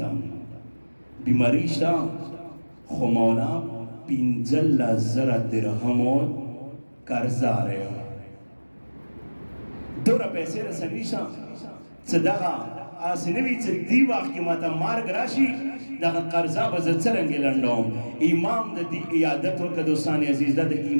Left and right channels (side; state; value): both; inverted; correlation -1.00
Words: بیماری شتا خو مولا 15,000 درہمو قرضہ رہے ہو دورا پیسے رسنی شتا صدقہ آسنوی چھ دی وقت کی ماتا مارگ راشی دا قرضہ بزد سرنگی لنڈوم امام دا دی ایادت ورکا دوستانی عزیز دا